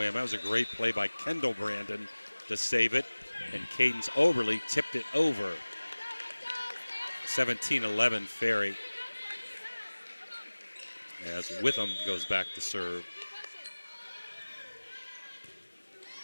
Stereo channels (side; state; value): both; inverted; correlation -1.00